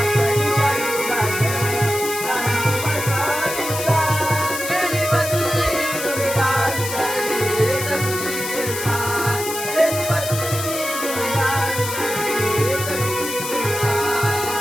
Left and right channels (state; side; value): noise; left; hiss, 6 dB below the sound